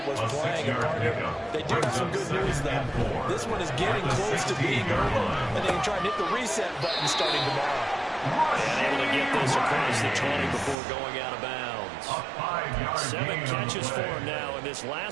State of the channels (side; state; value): left; drops out; at 10.8 s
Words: was playing. And partner, they do have some good news, though. This one is getting close to being over, and they can try and hit the reset button starting tomorrow. And able to get this across the 20 before going out of bounds. 7 catches for him now, and this